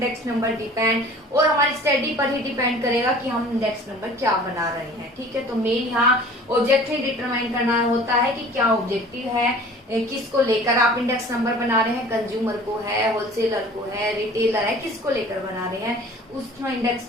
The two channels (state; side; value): normal; both; correlation 0.46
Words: number depend, और हमारी स्टडी पर ही डिपेंड करेगा कि हम इंडेक्स नंबर क्या बना रहे हैं, ठीक है। तो मेन यहाँ ऑब्जेक्टिव डिटरमाइन करना होता है कि क्या ऑब्जेक्टिव है, किसको लेकर आप इंडेक्स नंबर बना रहे हैं, कंज्यूमर को है, होलसेलर को है, रिटेलर है, किसको लेकर बना रहे हैं, उसमें